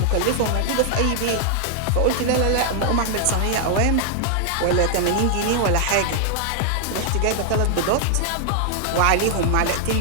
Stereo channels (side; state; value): both; different; correlation 0.00